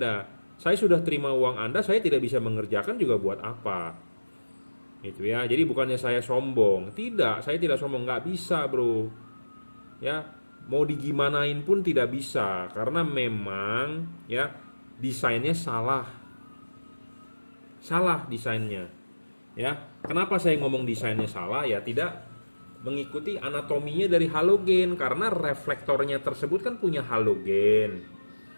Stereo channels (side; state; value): both; inverted; correlation -1.00